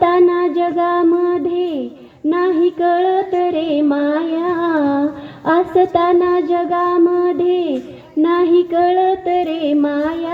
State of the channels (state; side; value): identical; both; correlation 1.00